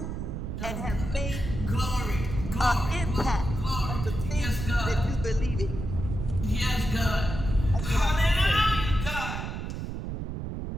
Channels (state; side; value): noise; right; rumble, 5 dB below the sound